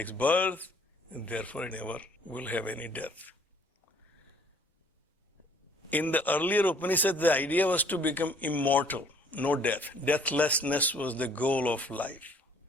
birth, and therefore it never will have any death. In the earlier Upanishads, the idea was to become immortal, no death. Deathlessness was the goal of life.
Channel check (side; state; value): both; normal; correlation 0.58